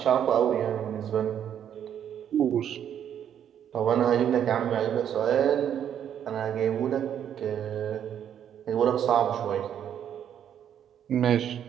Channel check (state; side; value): quieter; left; 9.4 dB